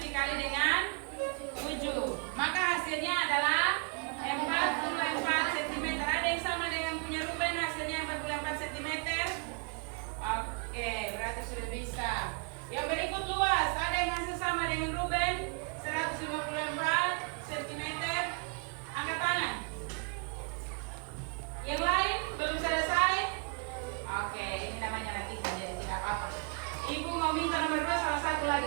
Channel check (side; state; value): left; quieter; 36.3 dB